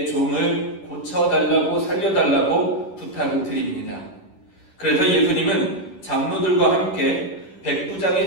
종을 고쳐달라고 살려달라고 부탁을 드립니다. 그래서 예수님은 장로들과 함께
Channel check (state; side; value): late; right; 11 ms